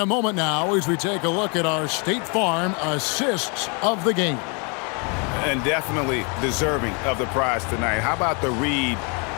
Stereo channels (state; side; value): quieter; right; 34.2 dB